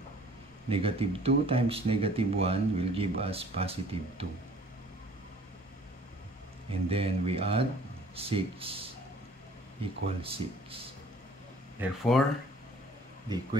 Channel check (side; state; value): both; normal; correlation 0.53